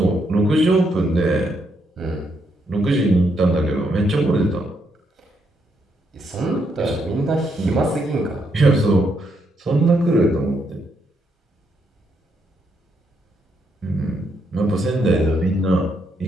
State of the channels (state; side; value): normal; both; correlation 0.76